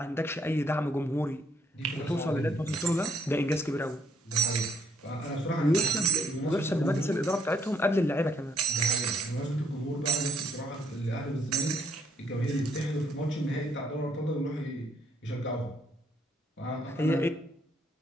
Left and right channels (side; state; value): both; normal; correlation 0.68